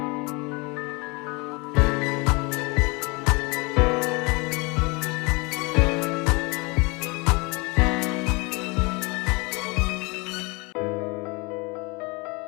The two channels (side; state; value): right; quieter; 27.8 dB